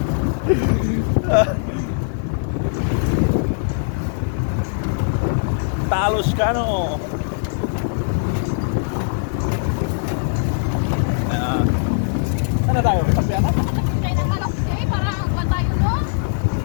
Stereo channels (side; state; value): right; silent; digital silence